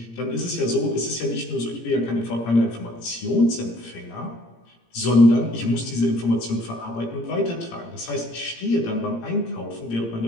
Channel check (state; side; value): late; right; 17 ms